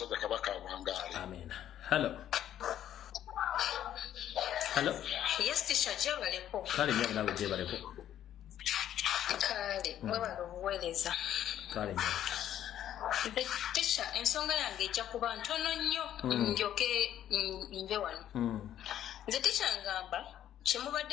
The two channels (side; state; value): right; quieter; 11.1 dB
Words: Kabaka awangaale. Amen. Hello. Hello? Yes, teacher, jebaleko. Kale nyabu nawe jebaleko. Kale, mwebala obuweereza. Kale nyabu. Teacher, ensonga yange ejja kuba ntono nnyo njoke nve wano. Nze teacher ngamba